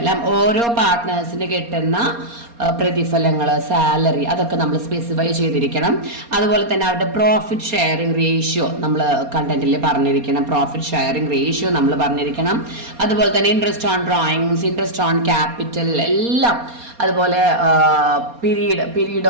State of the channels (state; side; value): late; left; 4.2 ms